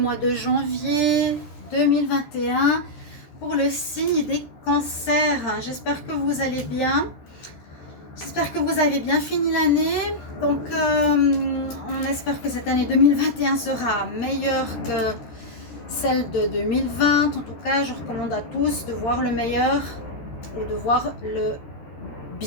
de janvier 2021, pour le signe des cancers. J'espère que vous allez bien, j'espère que vous avez bien fini l'année, donc on espère que cette année 2021 sera meilleure que celle de 2020. En tout cas, je recommande à tous de voir le meilleur et de voir le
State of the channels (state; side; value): late; right; 13 ms